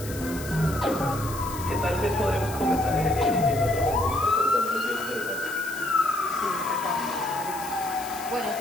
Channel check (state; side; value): noise; left; hiss, 13 dB below the sound